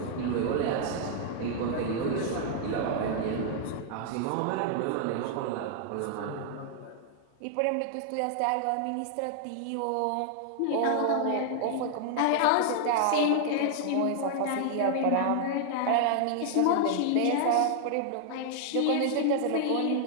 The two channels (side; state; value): both; different; correlation 0.00